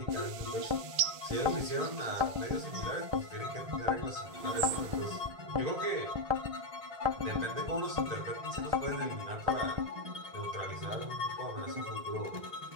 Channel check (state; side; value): late; left; 2.6 ms